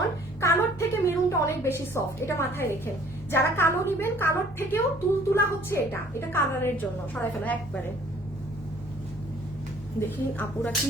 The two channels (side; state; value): both; normal; correlation 0.56